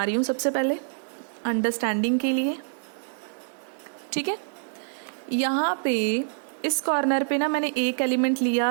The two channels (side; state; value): left; silent; digital silence